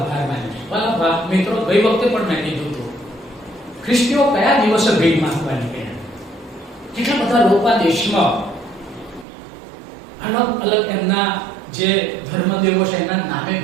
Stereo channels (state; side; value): drops out; left; at 9.2 s